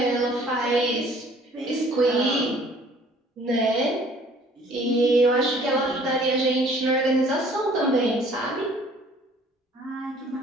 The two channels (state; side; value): normal; both; correlation 0.55